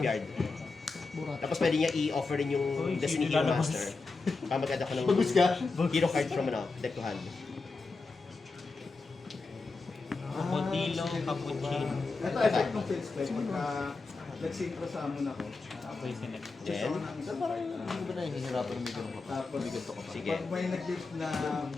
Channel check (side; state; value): right; quieter; 4.0 dB